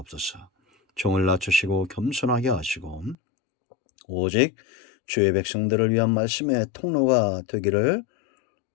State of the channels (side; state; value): right; drops out; at 3.2 s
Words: 종을 낮추시고 겸손하게 하시고 오직 주의 백성들을 위한 말씀의 통로가 되기를